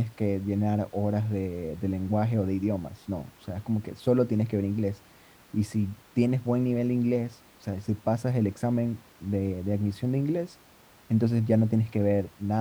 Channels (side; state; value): both; identical; correlation 1.00